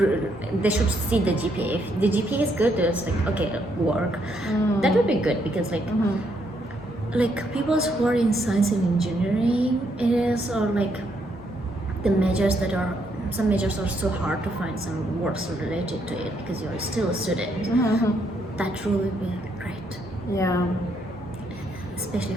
they should see the GPA. If the GPA is good, it's like okay, work. That would be good because like people who are in science and engineering is or like the majors that are some majors are so hard to find some works related to it because you're still a student. That rule would be great, Yeah. especially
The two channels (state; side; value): normal; both; correlation 0.74